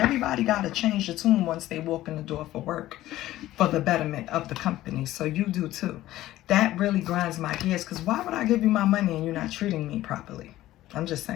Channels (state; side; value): quieter; right; 15.1 dB